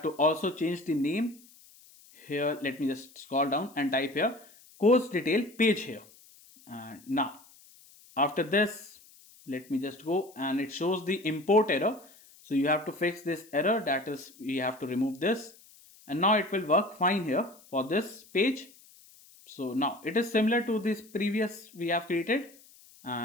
to also change the name. Here let me just scroll down and type here course detail page here. And now after this, let me just go, and it shows the import error. So you have to fix this error, that is we have to remove this, and now it will work fine here for this page. So now it is similar to this previous we have created,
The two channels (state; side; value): noise; left; hiss, 25 dB below the sound